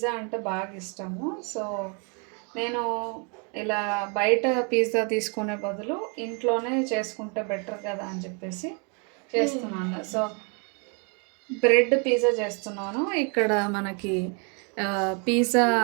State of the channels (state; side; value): quieter; left; 36.3 dB